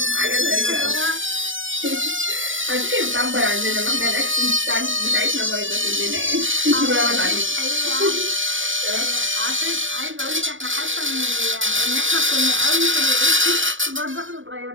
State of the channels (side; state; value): left; late; 0.57 ms